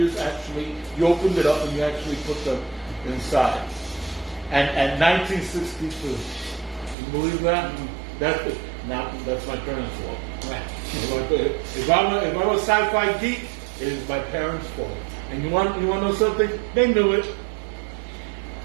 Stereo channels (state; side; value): drops out; left; at 7.0 s